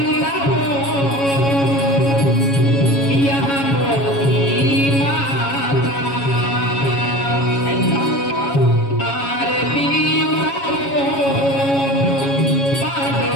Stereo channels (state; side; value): late; right; 7.2 ms